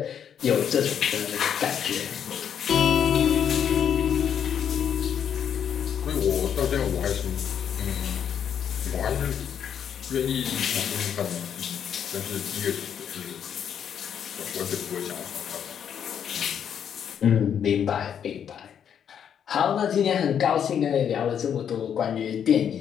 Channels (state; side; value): quieter; right; 8.5 dB